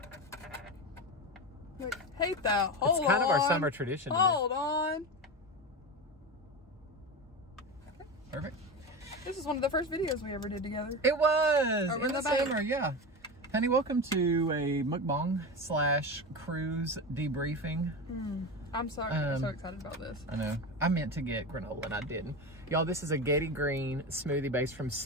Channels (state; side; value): normal; both; correlation 0.22